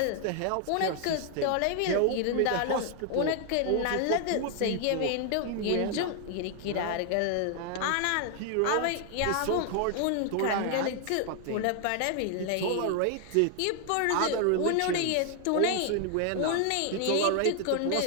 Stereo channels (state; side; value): different; both; correlation 0.00